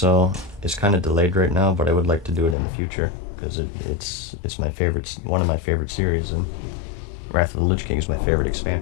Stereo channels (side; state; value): right; drops out; at 2.6 s